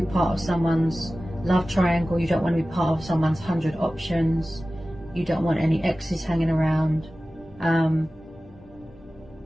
part of someone's love triangle, you don't want to be part of someone's 100 options, you don't want any exes hanging around.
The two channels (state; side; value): normal; both; correlation 0.96